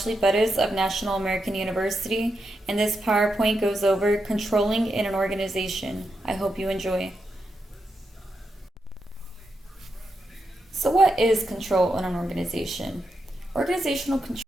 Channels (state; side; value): normal; both; correlation 0.85